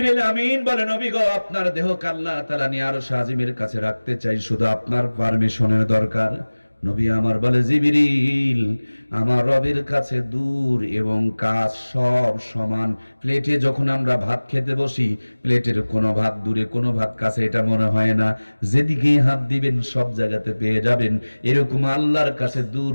আমিন বলে, নবী গো, আপনার দেহকে আল্লাহ তাআলা নিয়ে আরশ আজিমের কাছে রাখতে চাই, শুধু আপনার পারমিশনের দরকার। নবী আমার বলে, জিবরিল, আমার রবের কাছে দূর এবং কাছ সব সমান। প্লেটে যখন আমরা ভাত খেতে বসি, প্লেটের কোনো ভাত দূরে কোনো ভাত কাছে এটা মনে হয় না। যেদিকেই হাত দিবেন সব জায়গাতে পেয়ে যাবেন। এরকম আল্লাহর কাছে দূর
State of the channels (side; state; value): both; inverted; correlation -1.00